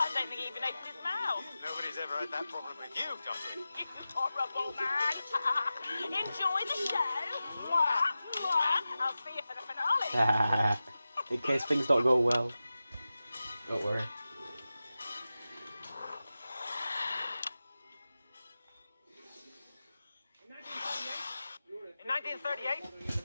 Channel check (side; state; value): both; inverted; correlation -0.94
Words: don't think he even opened his mouth. Nobody's ever had that problem with you, Dottie. You horrible man. Enjoy the show. Mwah, mwah. I'll see you for the finale. In case things don't go well. Don't worry. In